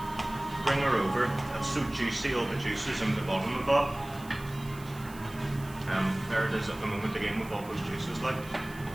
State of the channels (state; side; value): noise; right; hiss, 20 dB below the sound